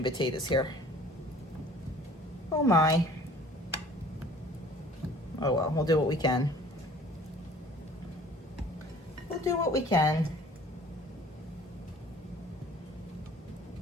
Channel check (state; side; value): normal; both; correlation 0.50